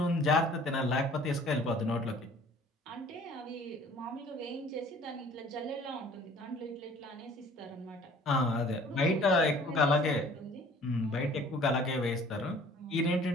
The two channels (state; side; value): normal; both; correlation 0.52